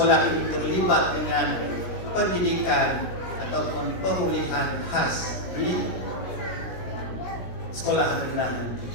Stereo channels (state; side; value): late; right; 17 ms